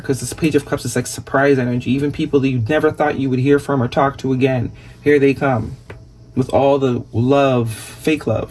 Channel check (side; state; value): both; identical; correlation 1.00